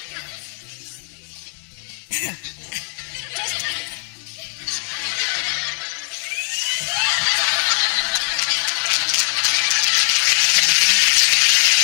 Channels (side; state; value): right; silent; digital silence